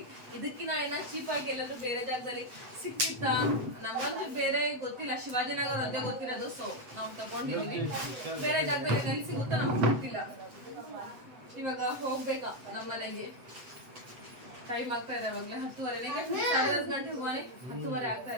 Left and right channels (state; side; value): late; left; 7.9 ms